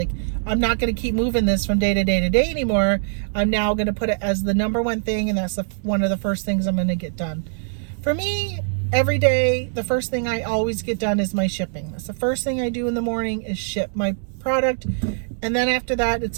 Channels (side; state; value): left; silent; digital silence